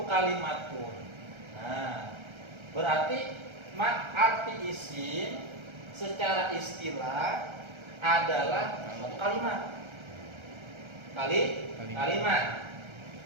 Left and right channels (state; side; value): late; left; 1.3 ms